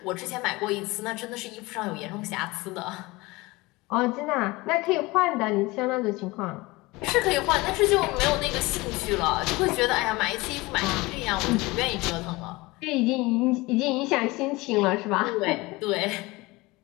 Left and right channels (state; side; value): quieter; right; 22.1 dB